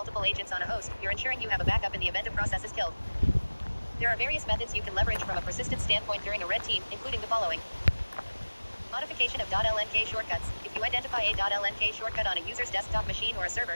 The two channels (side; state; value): both; inverted; correlation -1.00